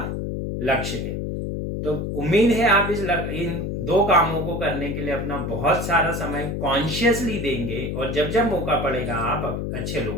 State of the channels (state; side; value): noise; left; hum, 3 dB below the sound